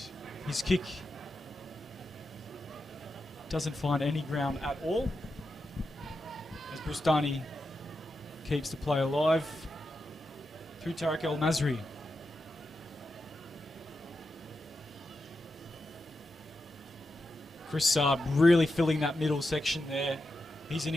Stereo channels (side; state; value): both; normal; correlation 0.88